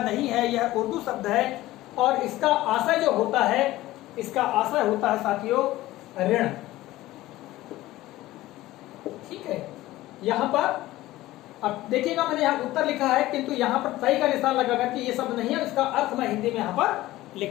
नहीं है, यह उर्दू शब्द है और इसका आशय जो होता है, इसका आशय होता है साथियों ऋण। ठीक है, यहाँ पर अब देखिएगा मैंने यहाँ उत्तर लिखा है किंतु यहाँ पर सही का निशान लगाकर कि ये शब्द नहीं है, इसका अर्थ मैं हिंदी में यहाँ पर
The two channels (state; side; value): quieter; right; 16.7 dB